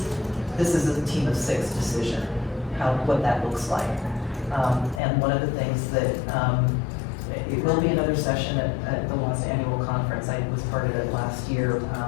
this is a team of 6 decision, what that looks like. And one of the things that, it will be another session at the last annual conference, I was part of it last year,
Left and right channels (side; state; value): right; drops out; at 5.0 s